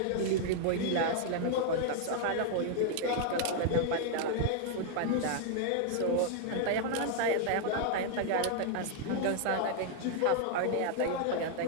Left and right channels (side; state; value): both; different; correlation 0.00